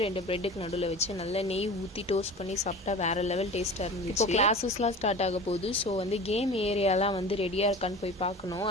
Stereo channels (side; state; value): both; normal; correlation 0.36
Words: 2 பிரெட்டுக்கு நடுவில் வச்சு நல்லா நெய் ஊற்றி டோஸ்ட் பண்ணி சாப்பிட்டா வேறு லெவல் டேஸ்ட்டாக இருந்துச்சு. இப்போ கிளாஸஸ்லாம் ஸ்டார்ட் ஆக போகுது. ஸோ வந்து கேம் ஏரியாலாம் வந்து ரெடியாக இருக்கான்னு போய் பார்க்கணும்.